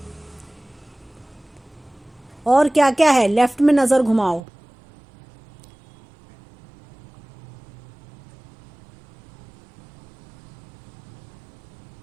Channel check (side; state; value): left; drops out; at 4.4 s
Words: और क्या क्या है? लेफ्ट में नजर घुमाओ।